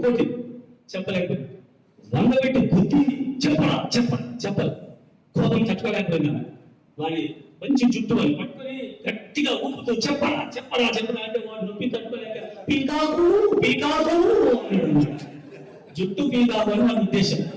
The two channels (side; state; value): both; identical; correlation 1.00